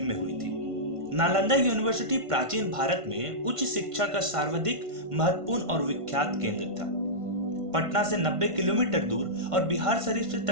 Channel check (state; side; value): late; left; 1.5 ms